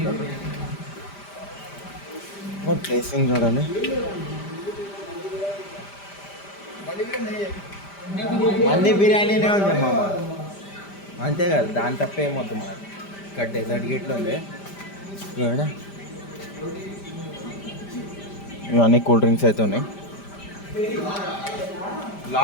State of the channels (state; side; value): late; right; 5.0 ms